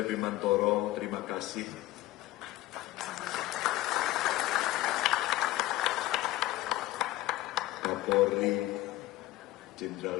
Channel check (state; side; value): quieter; right; 16.6 dB